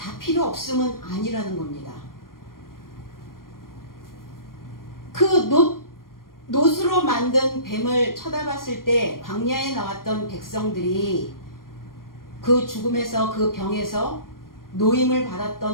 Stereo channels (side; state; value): right; late; 0.91 ms